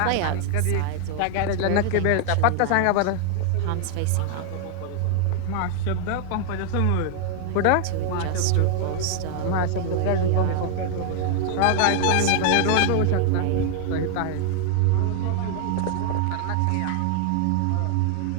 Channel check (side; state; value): both; different; correlation 0.00